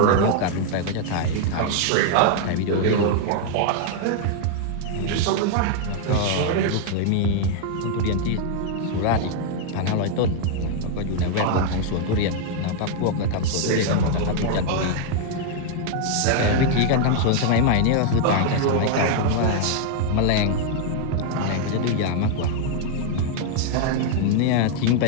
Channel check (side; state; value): both; different; correlation 0.00